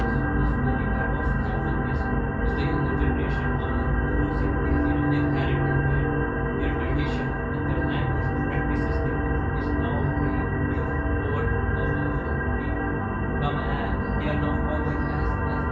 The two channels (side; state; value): both; identical; correlation 1.00